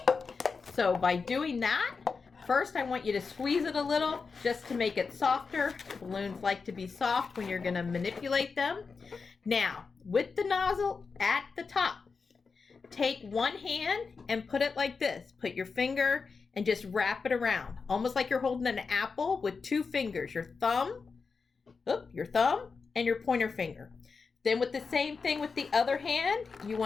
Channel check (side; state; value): right; quieter; 4.9 dB